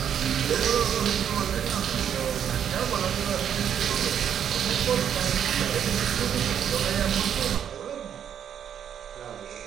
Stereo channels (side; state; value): left; quieter; 8.9 dB